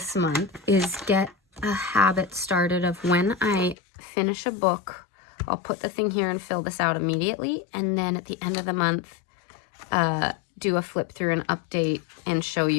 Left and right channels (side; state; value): right; drops out; at 3.8 s